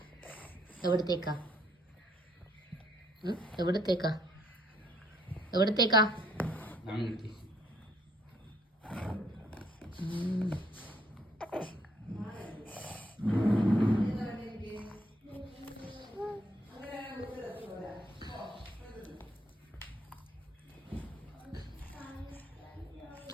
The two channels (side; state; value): both; normal; correlation 0.67